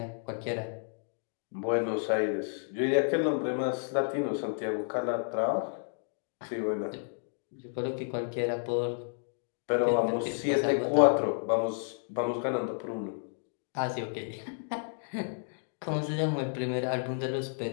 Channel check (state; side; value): silent; right; digital silence